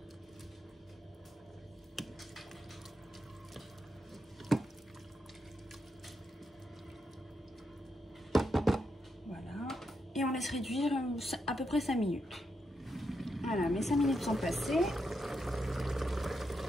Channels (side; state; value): both; normal; correlation 0.83